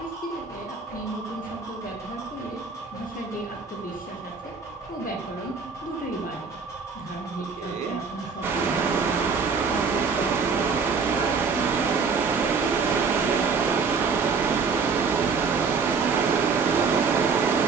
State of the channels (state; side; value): quieter; left; 5.2 dB